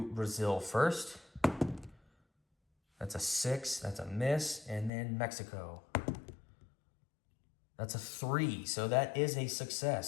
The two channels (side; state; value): right; drops out; at 4.9 s